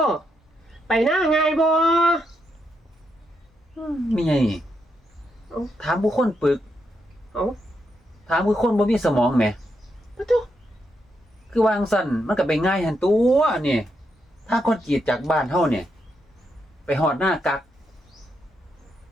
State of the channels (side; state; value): both; normal; correlation 0.81